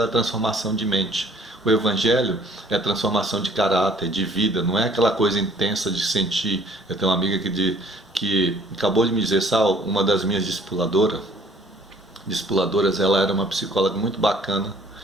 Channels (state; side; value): normal; both; correlation 0.56